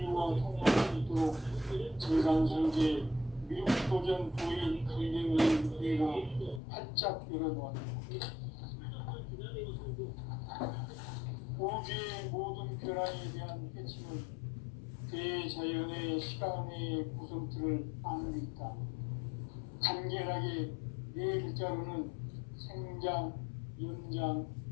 통합할 수 있도록 증산상제 미륵도전 도인 강대우의 우리가 활짝 열어놓았다. 우주의 모든 변화에 대한 핵심은 대자연의 시간의 구성틀을 아는 데 있다. 간결하게 네 글자로는 생장, 연장,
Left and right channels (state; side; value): drops out; right; at 6.6 s